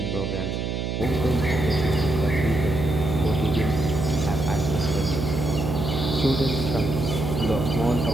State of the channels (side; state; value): right; noise; hum, 2 dB below the sound